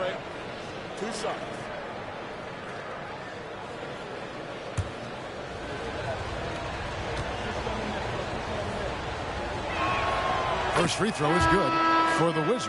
2 shots. First free throw is good for the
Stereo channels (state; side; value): identical; both; correlation 1.00